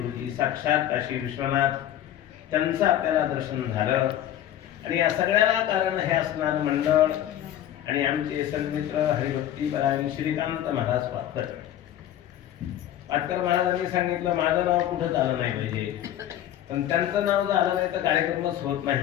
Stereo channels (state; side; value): quieter; right; 11.8 dB